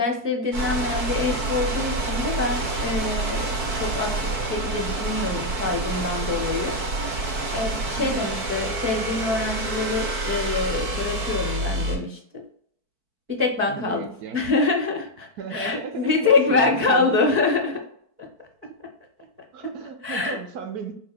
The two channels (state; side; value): late; left; 4.5 ms